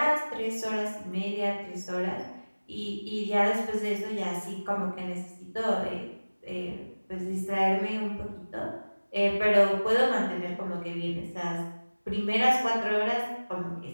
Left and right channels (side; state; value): both; inverted; correlation -1.00